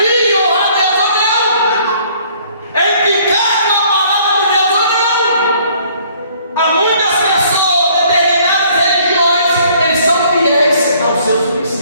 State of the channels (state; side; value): inverted; both; correlation -0.60